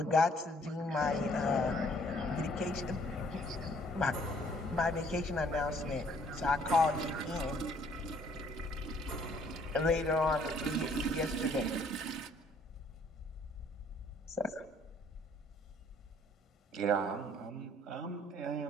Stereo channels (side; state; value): both; normal; correlation 0.62